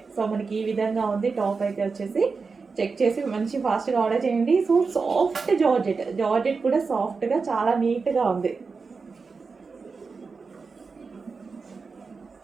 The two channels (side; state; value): left; quieter; 4.7 dB